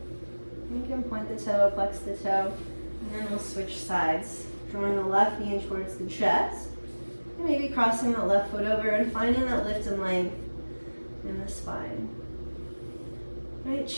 You can point the toe, flex the toe, and then we'll switch sides, drawing the left knee in towards the chest, and maybe crossing that left foot over and finding that lift and length in the spine. Right,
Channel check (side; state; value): both; inverted; correlation -1.00